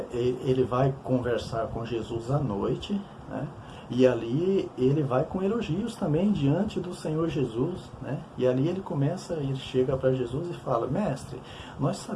ele vai conversar com Jesus à noite, né? E ali ele vai com elogios também diante do Senhor Jesus, né? E ali ele chega para Jesus e fala, mestre, nós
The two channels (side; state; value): both; identical; correlation 1.00